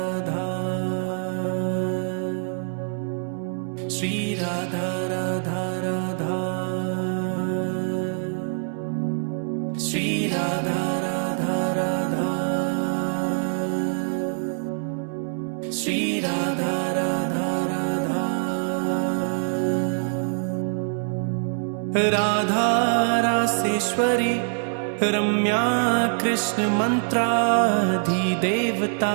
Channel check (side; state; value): left; silent; 62 dB below the other